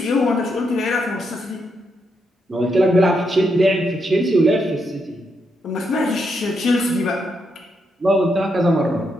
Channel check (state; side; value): normal; both; correlation 0.80